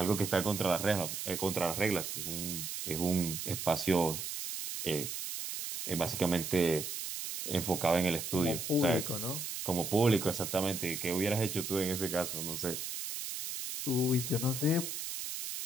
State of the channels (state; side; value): noise; right; hiss, 5 dB below the sound